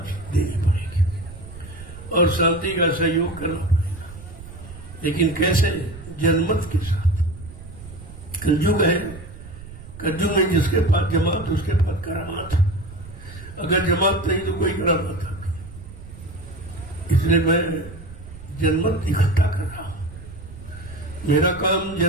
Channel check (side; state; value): right; noise; rumble, 15 dB below the sound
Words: देनी पड़ेगी और शांति का सहयोग करना पड़ेगा। लेकिन कैसे? जनमत के साथ। कलयुग है, कलयुग में जिसके पास जमात उसके पास करामात। अगर जमात नहीं तो कोई करामात आती। इसलिए मैं जनमत इकट्ठा कर रहा हूं। मेरा काम